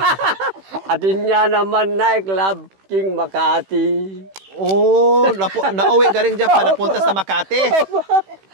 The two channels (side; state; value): left; late; 16 ms